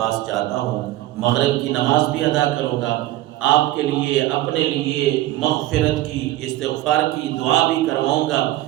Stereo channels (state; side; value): quieter; left; 15.9 dB